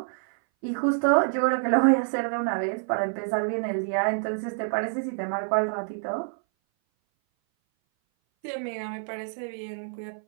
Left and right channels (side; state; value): left; silent; 58 dB below the other